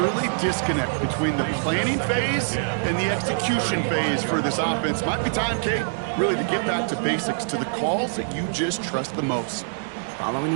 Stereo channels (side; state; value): left; silent; digital silence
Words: disconnect between the planning phase and the execution phase for this offense. Might be time, Kate, really to get back to basics, to the calls that you just trust the most.